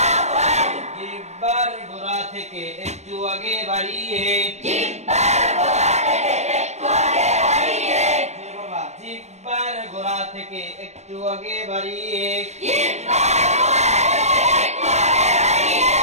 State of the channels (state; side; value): late; left; 0.32 ms